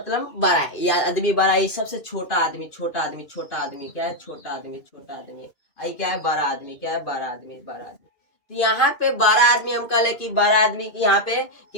बड़ा है, या आदमी बड़ा है, सबसे छोटा आदमी, छोटा आदमी, छोटा आदमी क्या है, छोटा आदमी, छोटा आदमी, आई क्या है, बड़ा आदमी, क्या है, बड़ा आदमी, बड़ा आदमी। तो यहाँ पे बड़ा आदमी हम कह ले कि बड़ा आदमी की, यहाँ पे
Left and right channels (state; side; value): late; right; 2.5 ms